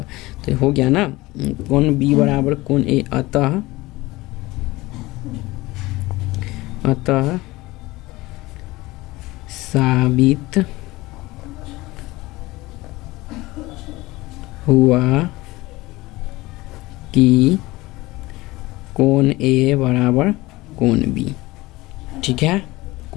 तो हो गया ना, कोण बी बराबर कोण ए। अतः साबित हुआ कि कोण ए बराबर कोण बी। ठीक है,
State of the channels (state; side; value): quieter; right; 20.1 dB